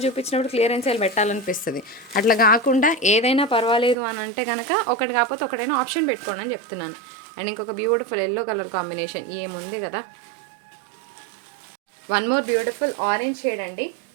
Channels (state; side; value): drops out; left; at 4.0 s